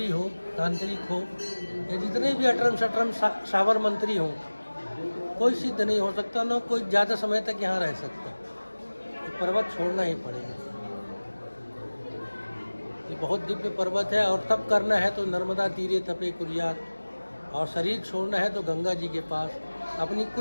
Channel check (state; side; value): inverted; both; correlation -1.00